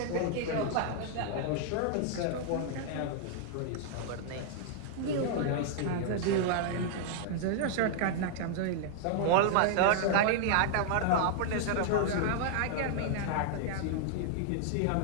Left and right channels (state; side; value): different; both; correlation -0.01